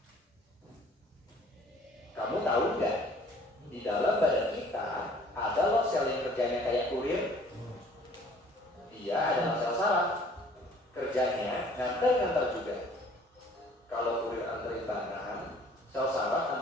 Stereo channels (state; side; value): normal; both; correlation 0.54